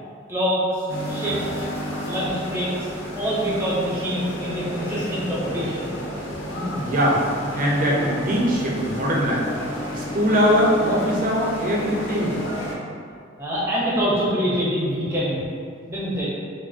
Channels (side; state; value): both; normal; correlation 0.36